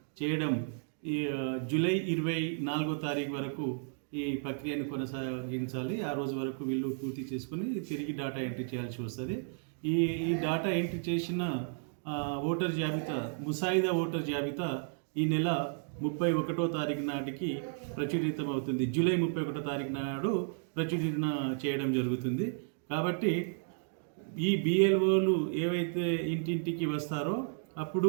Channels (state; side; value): silent; left; digital silence